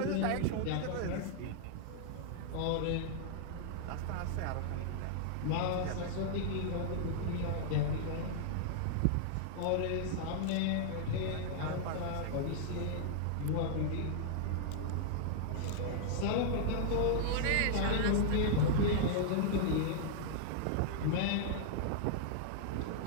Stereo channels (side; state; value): both; different; correlation -0.01